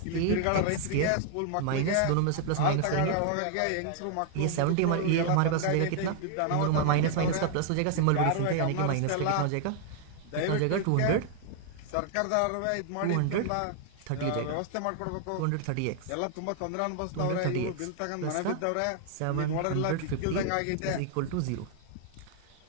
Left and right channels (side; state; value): both; different; correlation 0.00